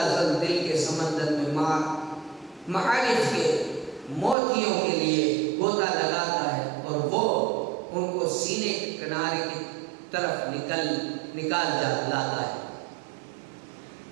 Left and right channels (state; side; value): drops out; left; at 4.4 s